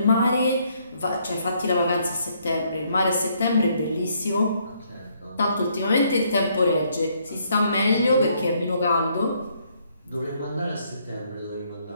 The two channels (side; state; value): both; inverted; correlation -0.70